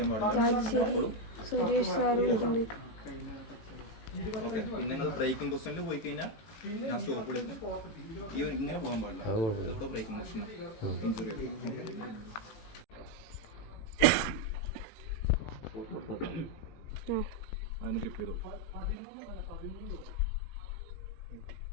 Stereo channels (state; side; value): late; right; 18 ms